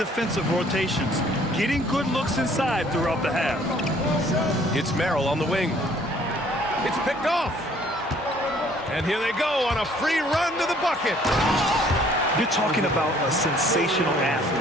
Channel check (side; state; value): both; normal; correlation 0.59